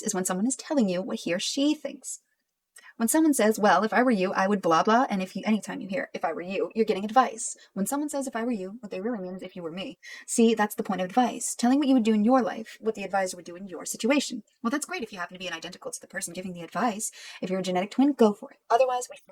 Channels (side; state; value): both; identical; correlation 1.00